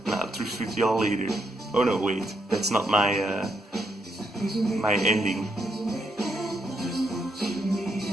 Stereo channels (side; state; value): both; normal; correlation 0.78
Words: and I'll thrift with y'all later. Oh no, wait, that's not my my ending.